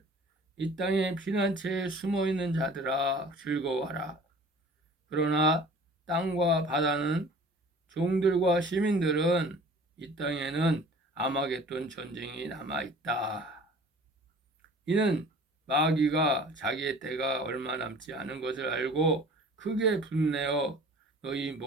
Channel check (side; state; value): both; normal; correlation 0.46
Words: 이 땅의 피난처에 숨어있는 자들아 즐거워하라. 그러나 땅과 바다는 종들과 시민들은 이 땅에는 아마겟돈 전쟁이 남아있다. 이는 마귀가 자기의 때가 얼마 남지 않은 것을 알고 크게 분내어 너희